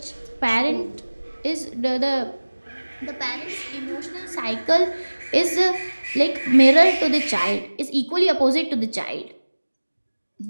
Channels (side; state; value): both; inverted; correlation -1.00